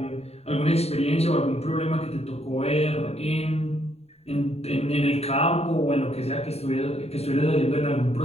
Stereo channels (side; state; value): right; late; 0.30 ms